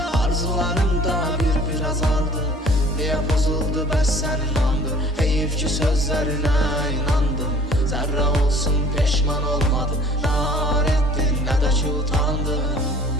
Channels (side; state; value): both; normal; correlation 0.51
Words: arzularım da bir azaldı. Niyə pozuldu bəs sənin andı, heyif ki sözlərinə inandım. Zərrə olsun peşman olmadım, nar etdin nə də ki utandım.